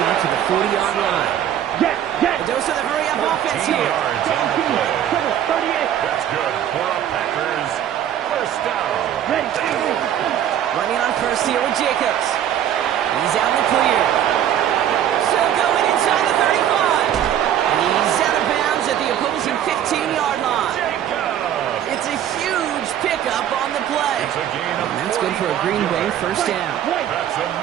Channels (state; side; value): quieter; left; 10.5 dB